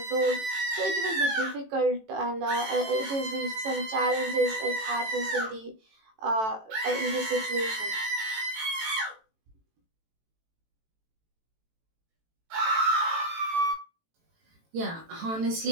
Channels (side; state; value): left; late; 18 ms